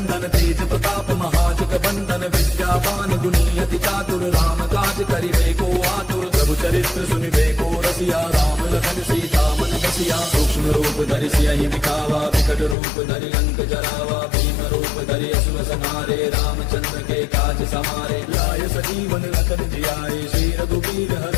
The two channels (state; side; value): drops out; right; at 12.8 s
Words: तेज प्रताप महाजग बंदन। विद्यावान गुणी अति चातुर राम काज करिबे को आतुर। प्रभु चरित्र सुनिबे को रसिया राम लखन सीता मन बसिया। सूक्ष्म रूप धरि सियहि दिखावा विकट रूप धरि लंक जरावा। भीम रूप धरि असुर संहारे रामचंद्र के काज समारे। लाय सजीवन लखन जियाए श्री रघुवीर